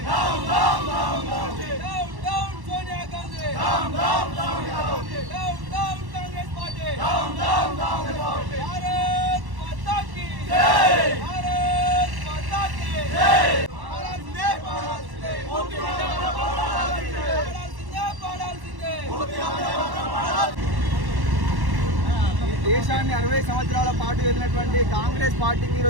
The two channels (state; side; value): late; left; 1.1 ms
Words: down down down down down Sonia Gandhi, down down down down down Congress party. Down down down Bharat Mata కీ జై. భారత్ మాతా కీ జై. పాడాల్సిందే, పాడాల్సిందే, పూర్తి వందే మాతరం పాడాల్సిందే. పాడాల్సిందే. పూర్తి వందే మాతరం పాడాల్సిందే. దేశాన్ని 60 సంవత్సరాల పాటు వెళ్ళినటువంటి కాంగ్రెస్ పార్టీకి